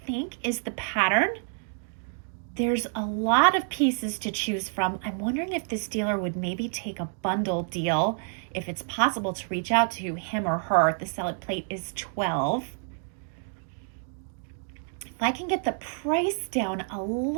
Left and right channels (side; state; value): left; silent; 59 dB below the other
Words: think, is the pattern. There's a lot of pieces to choose from. I'm wondering if this dealer would maybe take a bundle deal, if it's possible to reach out to him or her. The salad plate is $12. If I can get the price down a